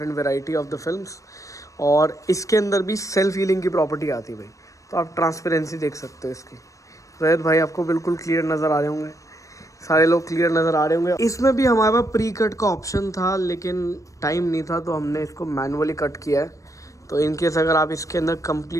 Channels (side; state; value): right; late; 0.16 ms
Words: variety of the films. और इसके अंदर भी सेल्फ हीलिंग की प्रॉपर्टी आती है भाई। तो आप ट्रांसपेरेंसी देख सकते हो इसकी। रोहित भाई आपको बिल्कुल क्लियर नज़र आ रहे होंगे, सारे लोग क्लियर नज़र आ रहे होंगे। इसमें भी हमारे पास प्री कट का ऑप्शन था, लेकिन टाइम नहीं था तो हमने इसको मैनुअली कट किया है। तो इनकेस अगर आप इसके अंदर